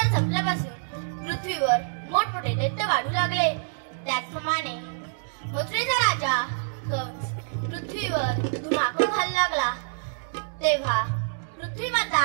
संपल्यापासून पृथ्वीवर मोठमोठे दैत्य वाढू लागले. त्याचप्रमाणे मथुरेचा राजा कंस पृथ्वीवर धुमाकूळ घालू लागला. तेव्हा पृथ्वी माता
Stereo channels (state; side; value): silent; left; digital silence